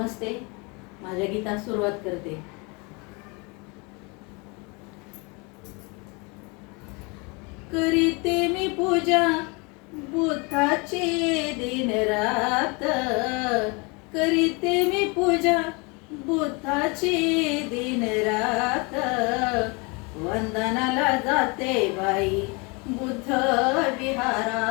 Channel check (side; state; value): right; quieter; 29.5 dB